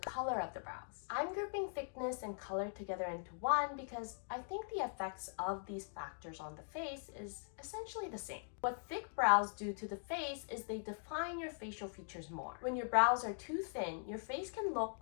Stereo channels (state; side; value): silent; right; digital silence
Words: of the brows. I'm grouping thickness and color together into one because I think the effects of these factors on the face is essentially the same. What thick brows do to the face is they define your facial features more. When your brows are too thin, your face can look